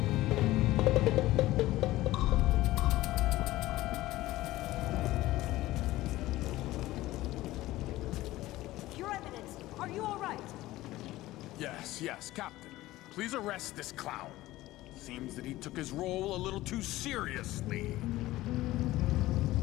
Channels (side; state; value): right; quieter; 16.9 dB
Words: Your Eminence, are you all right? Yes, Captain. Please arrest this clown. Seems that he took his role a little too seriously.